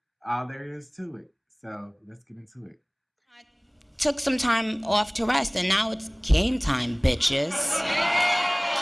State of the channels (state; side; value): identical; both; correlation 1.00